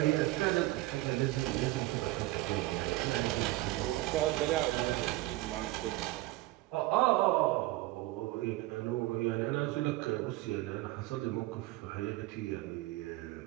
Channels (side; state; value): left; quieter; 18.4 dB